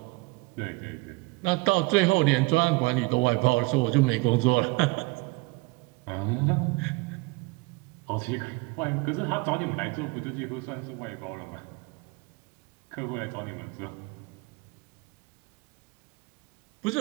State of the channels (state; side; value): quieter; left; 24.1 dB